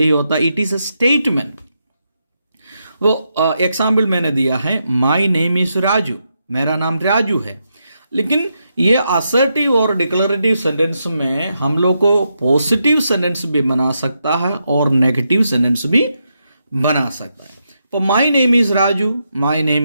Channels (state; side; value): inverted; both; correlation -0.83